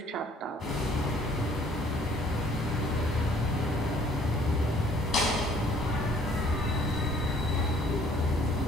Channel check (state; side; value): normal; both; correlation 0.59